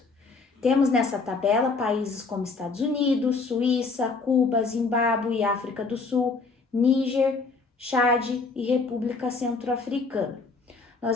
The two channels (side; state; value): right; quieter; 4.2 dB